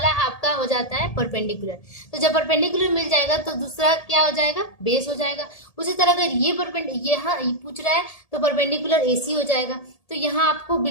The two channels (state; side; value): late; right; 1.8 ms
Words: आपका हो जाता है परपेंडिकुलर। तो जब परपेंडिकुलर मिल जाएगा तो दूसरा क्या हो जाएगा बेस हो जाएगा। उसी तरह अगर ये यहाँ पूछ रहा है तो परपेंडिकुलर AC हो जाएगा। तो यहाँ आपको